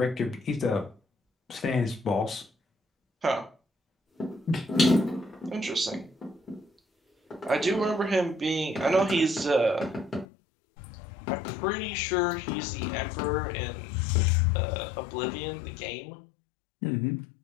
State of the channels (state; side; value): drops out; right; at 10.2 s